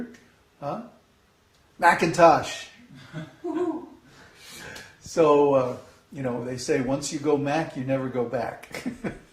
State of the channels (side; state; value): both; identical; correlation 1.00